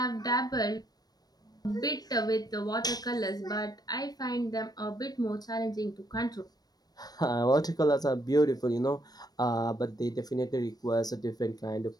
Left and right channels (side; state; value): right; late; 0.19 ms